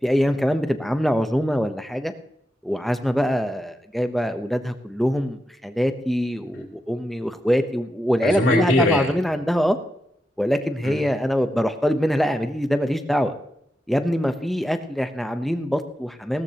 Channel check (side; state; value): both; normal; correlation 0.87